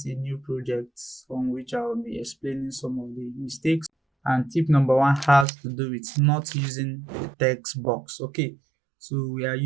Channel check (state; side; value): drops out; left; at 5.5 s